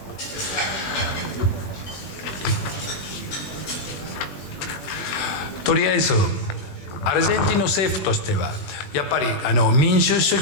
とりあえずアルゼンチンの政府としてはやっぱり民主主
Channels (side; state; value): right; late; 21 ms